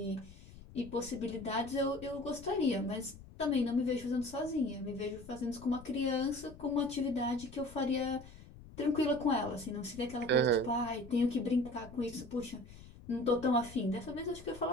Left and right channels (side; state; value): left; noise; rumble, 18 dB below the sound